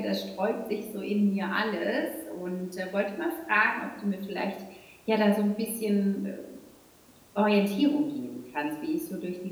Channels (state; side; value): identical; both; correlation 1.00